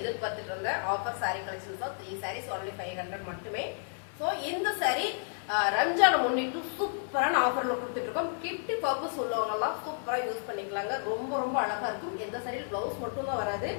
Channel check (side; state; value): right; silent; 57 dB below the other